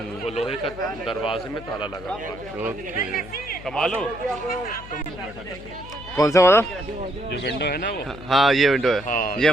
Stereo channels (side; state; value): left; noise; hum, 16 dB below the sound